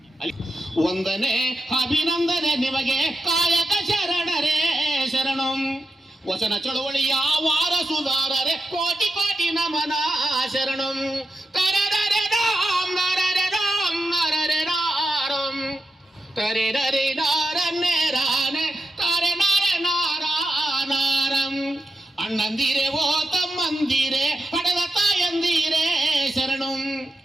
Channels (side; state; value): both; normal; correlation 0.88